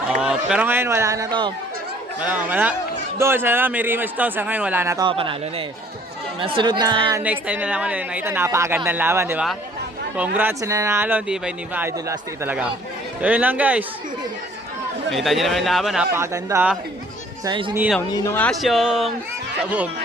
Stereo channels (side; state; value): both; normal; correlation 0.57